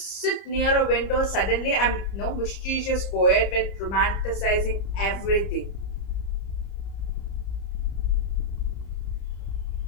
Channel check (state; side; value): late; right; 30 ms